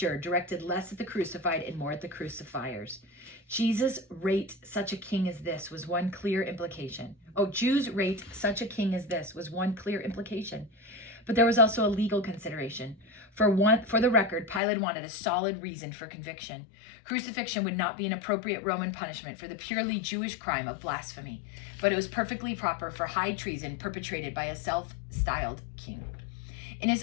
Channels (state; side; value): drops out; right; at 14.6 s